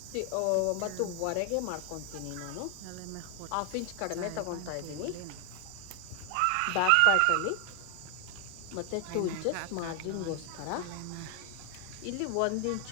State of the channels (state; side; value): different; both; correlation 0.00